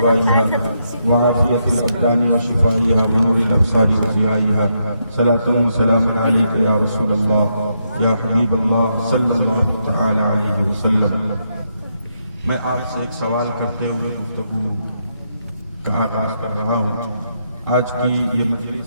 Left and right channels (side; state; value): both; inverted; correlation -0.80